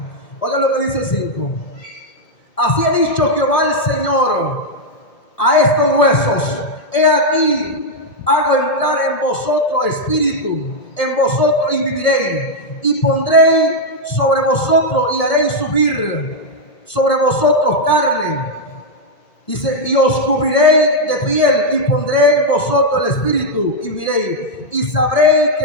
Oiga lo que dice el 5. Así ha dicho Jehová el Señor a estos huesos: he aquí, hago entrar en vosotros espíritu, en vosotros y viviréis, y pondré sobre vosotros y haréis subir sobre vosotros carne, y os cubriré de piel, y pondré en vosotros el espíritu y viviréis, y sabréis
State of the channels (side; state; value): right; late; 1.7 ms